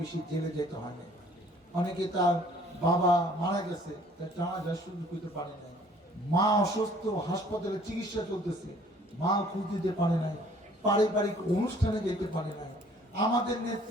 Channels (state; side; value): normal; both; correlation 0.56